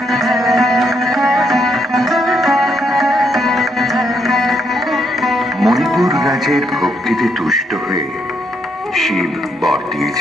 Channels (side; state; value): both; normal; correlation 0.75